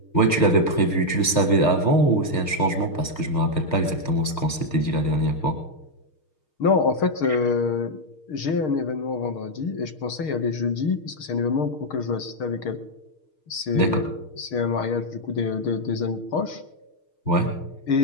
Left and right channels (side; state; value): right; late; 6.5 ms